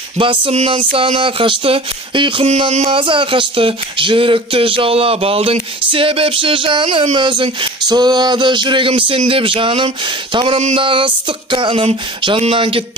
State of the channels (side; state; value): both; normal; correlation 0.39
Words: Басымнан сана қашты, ұйқымнан маза қашты, жүректі жаулап алдың, себепші жаным өзің. Соғады жүрегім сен деп жаным, тамырымдағы ыстық қаным, жаннан